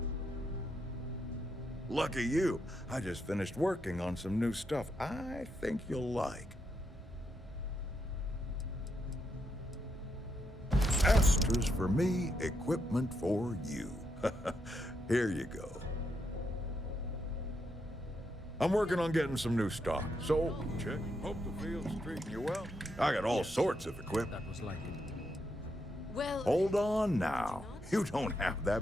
Lucky you, I just finished working on some new stuff I think you'll like. Astras for me, equipment for you. Here you go. I'm working on getting some new stock, so check. Hope the field's treating you well. I got all sorts of equipment. That was like it. Well... Hold on now. You don't have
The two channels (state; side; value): normal; both; correlation 0.80